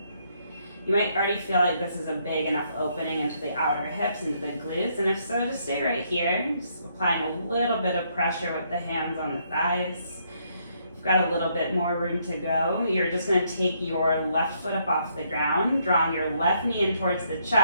You might already feel like this is a big enough opening into the outer hips, into the glutes, and if so, just stay right here. Just applying a little bit of pressure with the hands on the thighs. If you've got a little bit more room to go, you're just going to take your left foot up off the ground, drawing your left knee in towards the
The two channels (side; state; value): both; inverted; correlation -0.72